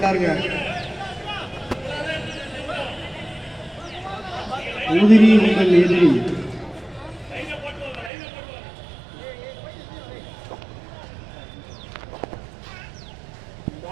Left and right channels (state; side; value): drops out; left; at 8.1 s